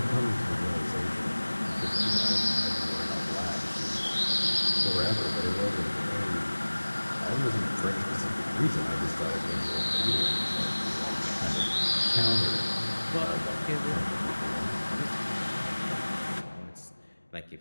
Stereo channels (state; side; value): inverted; both; correlation -1.00